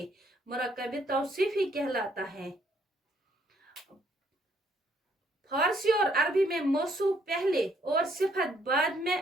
मुरक्कब तौसीफी कहलाता है। फारसी और अरबी में मौसूफ पहले और सिफत बाद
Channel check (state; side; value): normal; both; correlation 0.68